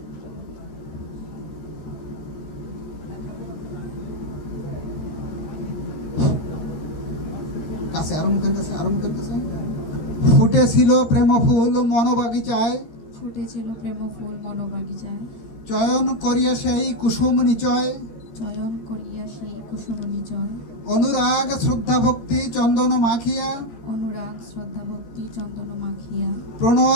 কাছে আর মুখের কাছে, ফুটেছিল প্রেম ফুল মনোবাগিচায়, ফুটেছিল প্রেম ফুল মনোবাগিচায়, চয়ন করিয়া সেই কুসুম নিচয়, চয়ন করিয়া সেই কুসুম নিচয়, অনুরাগ শ্রদ্ধা ভক্তি চন্দন মাখিয়া, অনুরাগ শ্রদ্ধা ভক্তি চন্দন মাখিয়া,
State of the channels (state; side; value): late; right; 13 ms